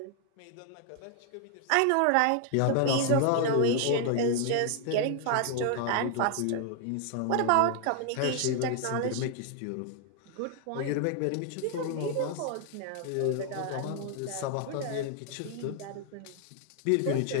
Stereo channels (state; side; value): different; both; correlation 0.00